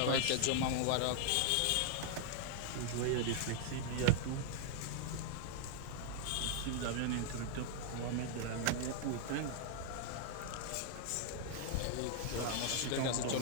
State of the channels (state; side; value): different; both; correlation 0.00